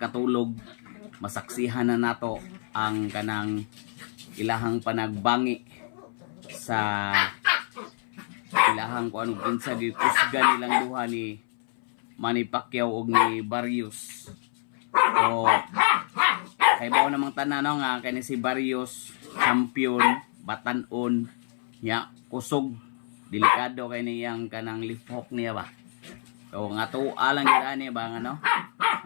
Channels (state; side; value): silent; right; 58 dB below the other